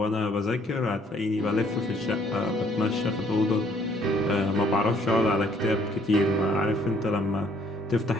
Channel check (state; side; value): normal; both; correlation 0.63